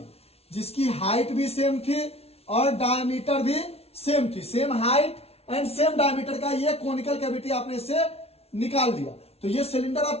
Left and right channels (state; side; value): late; right; 0.30 ms